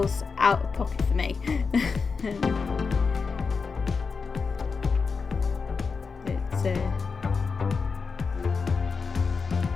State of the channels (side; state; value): right; quieter; 5.0 dB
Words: out of pocket for me.